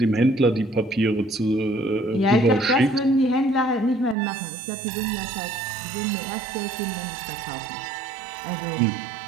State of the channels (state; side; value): drops out; left; at 4.2 s